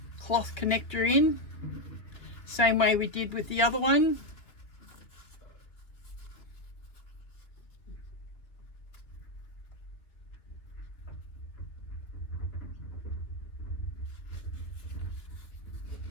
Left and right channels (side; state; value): right; late; 2.7 ms